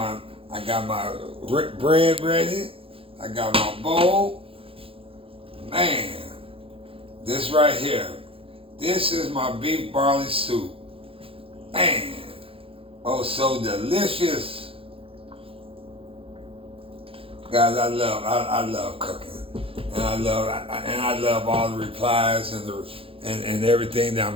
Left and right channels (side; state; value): left; late; 0.27 ms